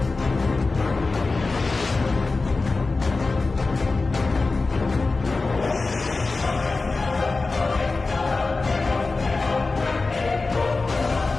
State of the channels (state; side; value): quieter; right; 3.7 dB